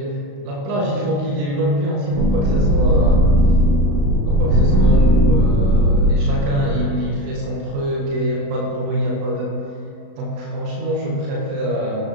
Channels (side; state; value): left; late; 36 ms